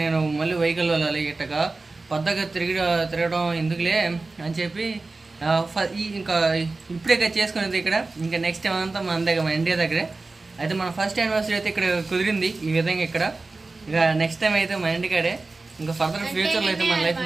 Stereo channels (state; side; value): quieter; left; 3.5 dB